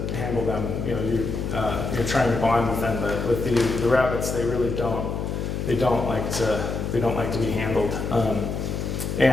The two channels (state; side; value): noise; left; hum, 3 dB below the sound